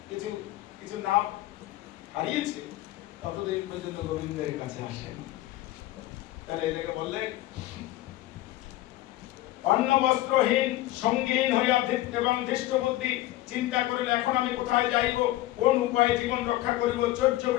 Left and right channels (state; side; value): quieter; right; 16.0 dB